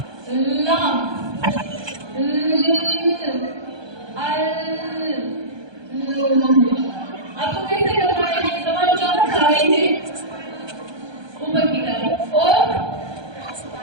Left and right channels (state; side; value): late; left; 1.2 ms